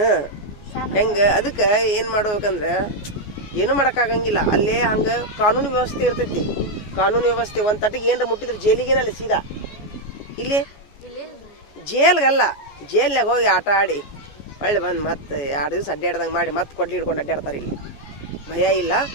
ಹೆಂಗ ಅದಕ್ಕೆ ಏನು ಮಾಡ್ಬೇಕಂದ್ರೆ ಏನೂ ಮಾಡೋಕ್ಕಾಗಂಗಿಲ್ಲ. ಅಲ್ಲೇ ಹಂಗೆ ಕಾನೂನು ವ್ಯವಸ್ಥೆ ಇರ್ತೈತಿ. ಕಾನೂನು ವ್ಯವಸ್ಥೆ ಒಂದು ತಟ್ಟಿಗೆ ಏನರ ಮುಟ್ಟಿದ್ರೆ ಜೈಲಿಗೇನಲ್ಲ ಸೀದಾ. ಇಲ್ಲಿ ಜೇಲ್ಗಲ್ಲ, ಜೇಲ್ನಾಗ ಹೋಗಿ ಆಟ ಆಡಿ ಒಳ್ಳೆ ಬಂದು ಮತ್ತೆ 2 ದಿವಸ ಅಡ್ಡಾಡ್ದಂಗೆ ಮಾಡಿ ಮತ್ತೆ ಕೊಡ್ಲಿ ಹಿಡ್ಕೊಂಡು ಅಡ್ಡಾಡ್ತಾರೆ. ಇಲ್ಲಿ ಭಯ ಇಲ್ಲ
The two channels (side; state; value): right; late; 14 ms